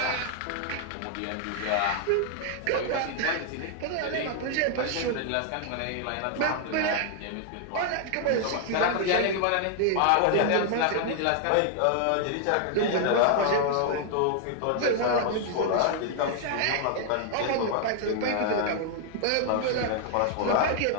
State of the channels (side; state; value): both; different; correlation 0.00